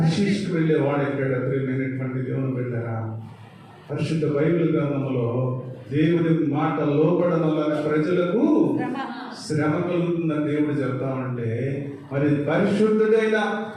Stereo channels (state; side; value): identical; both; correlation 1.00